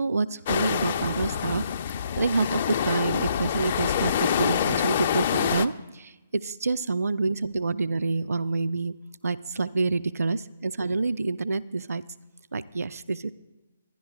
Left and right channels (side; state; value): both; inverted; correlation -0.75